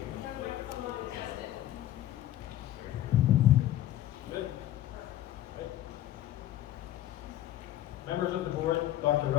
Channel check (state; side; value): quieter; right; 13.1 dB